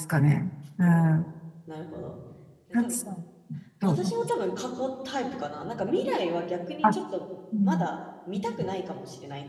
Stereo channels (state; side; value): identical; both; correlation 1.00